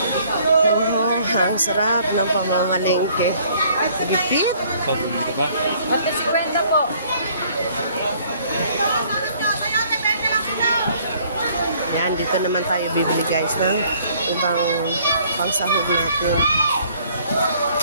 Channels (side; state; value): both; inverted; correlation -0.60